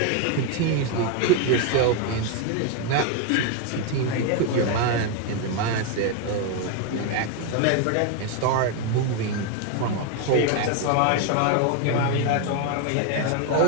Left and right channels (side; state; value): both; different; correlation 0.01